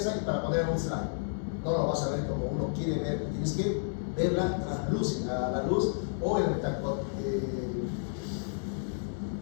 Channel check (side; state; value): right; silent; digital silence